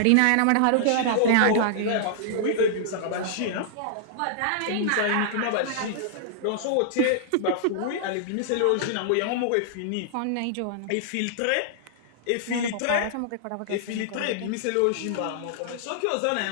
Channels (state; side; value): different; both; correlation -0.01